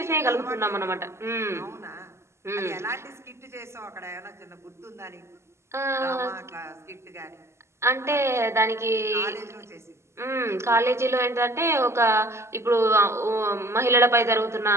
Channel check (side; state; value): left; late; 0.13 ms